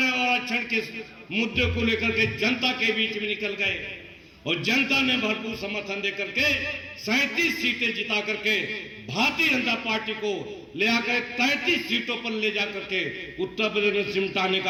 और आरक्षण के मुद्दे को लेकर के जनता के बीच में निकल गए और जनता ने भरपूर समर्थन देकर के 37 सीटें जिता करके भारतीय जनता पार्टी को ले आकर 33 सीटों पर ले जाकर के उत्तर प्रदेश में सिमटाने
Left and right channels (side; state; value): both; identical; correlation 1.00